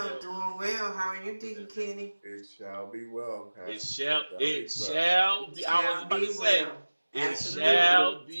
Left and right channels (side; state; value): both; inverted; correlation -1.00